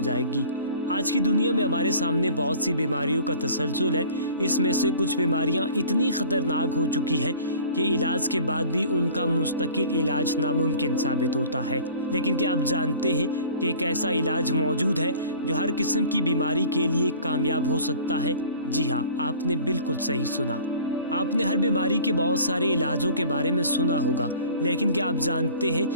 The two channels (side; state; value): both; inverted; correlation -0.46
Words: جائے گی۔ آج کی دنیا میں ہمارے سامنے بہت سی بیماریوں کا تسلسل ہے۔ اس میں سے کچھ بیماریاں اتنی خطرناک ہو چکی ہیں کہ علاج کے بعد بھی ان کا مستقل علاج ناممکن ثابت ہوتا ہے۔ لیکن کیا آپ جانتے ہیں کہ ایک ایسا علاج موجود ہے جو ہر قسم کی بیماری کے لیے کامیاب ہو سکتا ہے؟ جی ہاں، آپ نے بالکل صحیح سنا۔ آپ نے ہر بیماری کے بہت سارے علاجوں کے بارے میں سنا ہوگا، لیکن کیا آپ جانتے ہیں